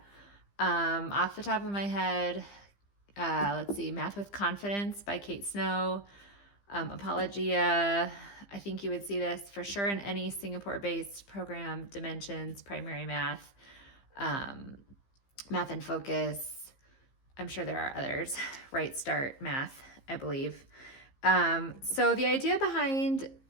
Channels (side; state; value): right; late; 15 ms